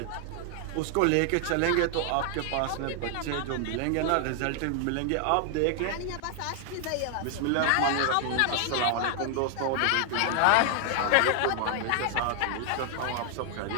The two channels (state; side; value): different; both; correlation 0.00